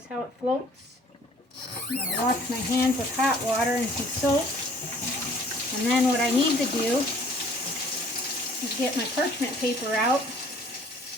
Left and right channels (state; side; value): normal; both; correlation 0.55